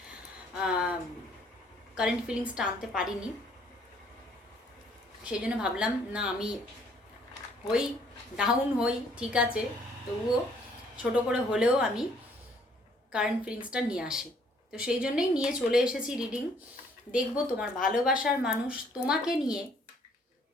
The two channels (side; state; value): both; normal; correlation 0.62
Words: কারেন্ট ফিলিংসটা আনতে পারিনি, সেই জন্য ভাবলাম না আমি ডাউন হই ঠিক আছে, তবুও ছোট করে হলেও আমি কারেন্ট ফিলিংসটা নিয়ে আসি। তো সেই জন্যই নিয়ে চলে এসেছি রিডিং। দেখব তোমার ভালোবাসার মানুষ তোমাকে নিয়ে